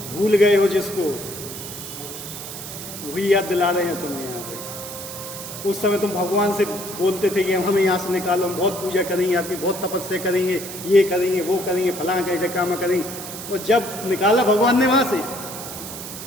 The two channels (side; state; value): right; noise; hiss, 10 dB below the sound